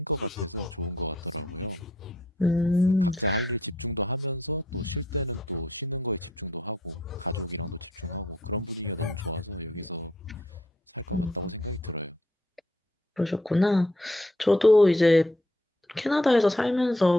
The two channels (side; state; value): both; normal; correlation 0.67